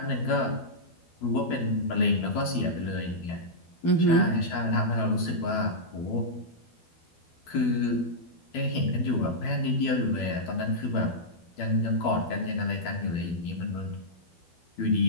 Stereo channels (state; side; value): late; right; 12 ms